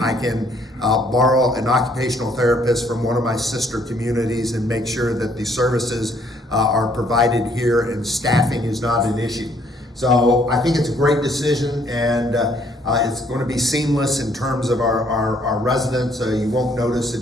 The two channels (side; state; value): both; normal; correlation 0.65